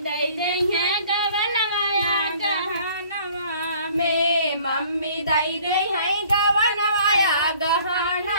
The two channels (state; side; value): inverted; both; correlation -0.54